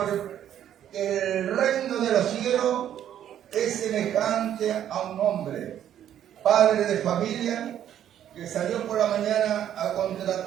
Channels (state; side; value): quieter; left; 10.5 dB